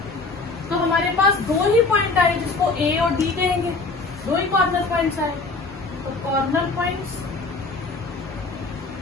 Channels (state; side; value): quieter; right; 3.7 dB